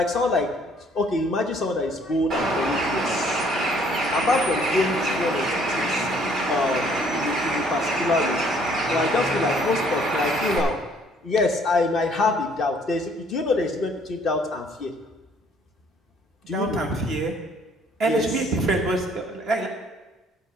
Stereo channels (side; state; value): both; normal; correlation 0.61